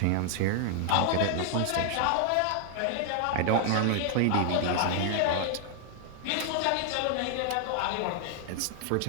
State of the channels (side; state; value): both; different; correlation 0.00